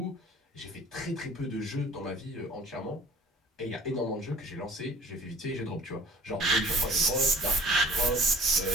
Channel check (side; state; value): both; normal; correlation 0.50